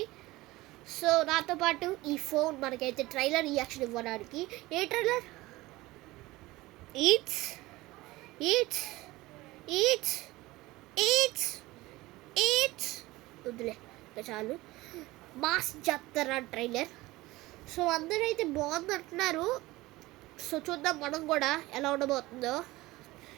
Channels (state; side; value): quieter; left; 19.5 dB